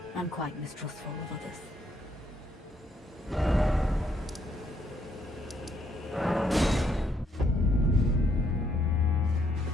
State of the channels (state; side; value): normal; both; correlation 0.72